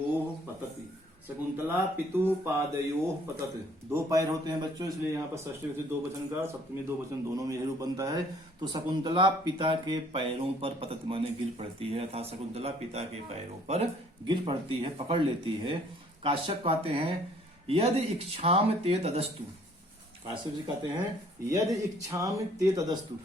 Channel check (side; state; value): both; normal; correlation 0.59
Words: पतति। शकुंतला पितुः पादयोः पतति। दो पैर होते हैं बच्चों, इसलिए यहाँ पर षष्ठी विभक्ति दो वचन का, सप्तमी दो वचन दोनों में यही रूप बनता है। तो शकुंतला पिता के पैरों पर पतति माने गिर पड़ती है, अर्थात शकुंतला पिता के पैरों पर गिर पड़ती है, पकड़ लेती है। काश्यप कहते हैं यदि इच्छाम ते तदस्तु। काश्यप जी कहते हैं यदि इच्छाम ते तदस्तु।